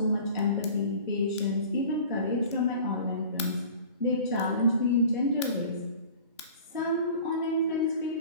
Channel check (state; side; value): inverted; both; correlation -0.44